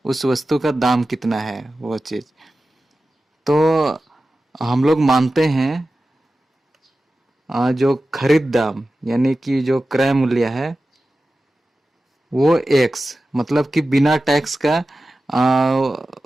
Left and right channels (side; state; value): both; normal; correlation 0.94